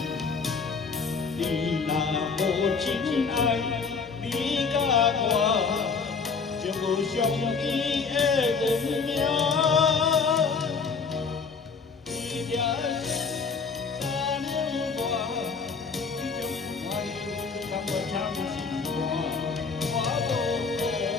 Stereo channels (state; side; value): quieter; right; 5.1 dB